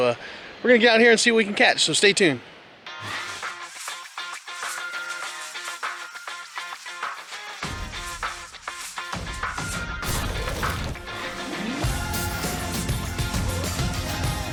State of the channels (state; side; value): identical; both; correlation 1.00